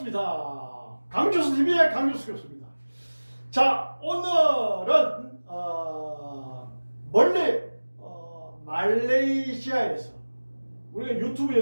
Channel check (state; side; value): inverted; both; correlation -1.00